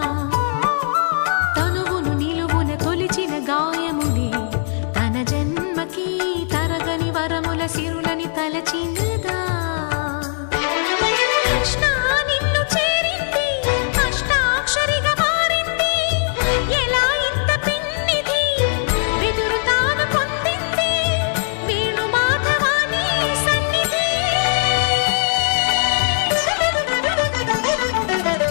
తనువును నిలువున తొలిచిన గాయములే తన జన్మకి తరగని వరముల సిరులని తలచినదా కృష్ణ నిన్ను చేరింది అష్టాక్షరిగా మారింది ఎలా ఇంత పిన్నిది వెదురు తాను పొందింది వేణు మాధవాని సన్నిధి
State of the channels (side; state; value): right; silent; 64 dB below the other